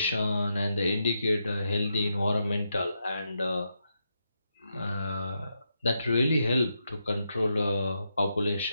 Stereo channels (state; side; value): inverted; both; correlation -0.83